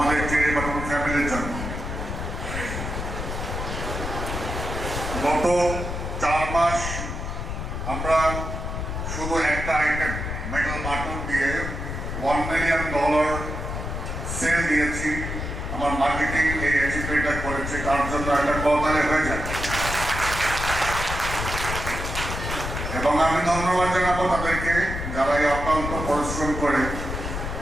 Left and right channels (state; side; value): noise; left; rumble, 5 dB below the sound